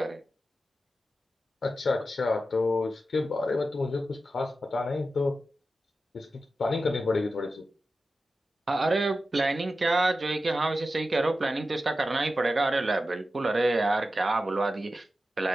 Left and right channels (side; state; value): both; normal; correlation 0.92